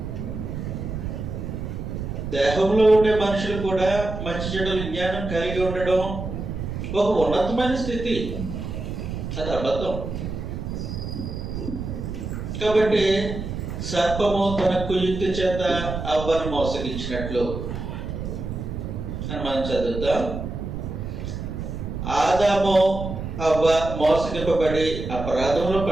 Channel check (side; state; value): right; noise; rumble, 6 dB below the sound